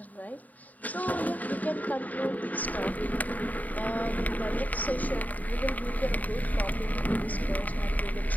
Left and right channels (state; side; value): late; right; 0.076 ms